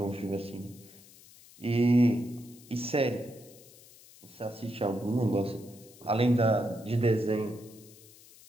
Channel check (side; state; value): left; noise; hiss, 23 dB below the sound